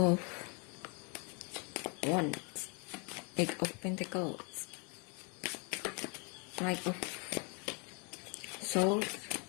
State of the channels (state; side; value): quieter; right; 34.2 dB